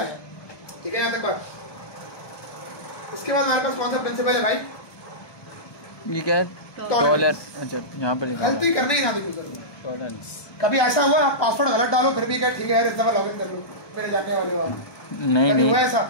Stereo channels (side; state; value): right; late; 1.2 ms